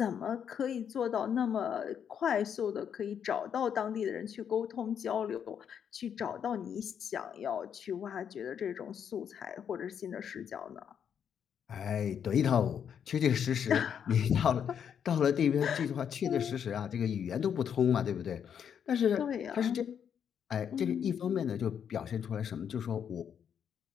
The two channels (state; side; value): quieter; right; 8.1 dB